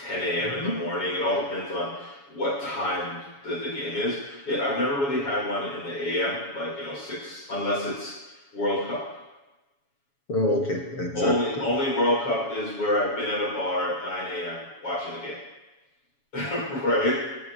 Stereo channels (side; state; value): right; late; 7.1 ms